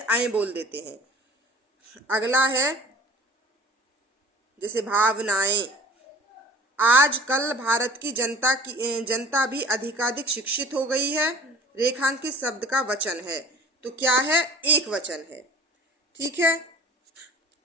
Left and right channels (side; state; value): both; normal; correlation 0.44